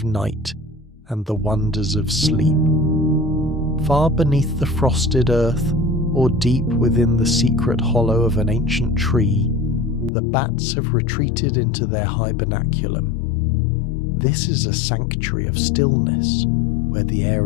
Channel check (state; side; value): drops out; right; at 10.1 s